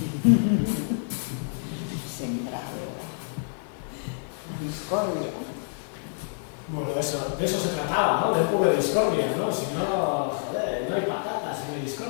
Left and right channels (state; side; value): silent; right; 60 dB below the other